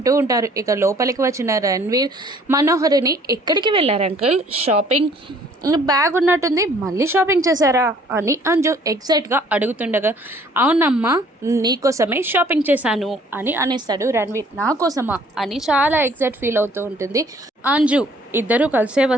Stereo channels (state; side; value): normal; both; correlation 0.57